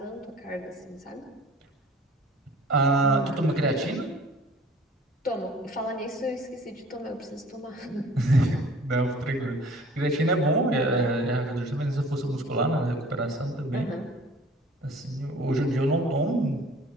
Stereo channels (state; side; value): normal; both; correlation 0.49